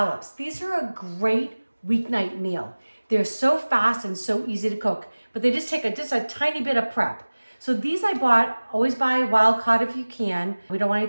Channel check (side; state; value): both; inverted; correlation -1.00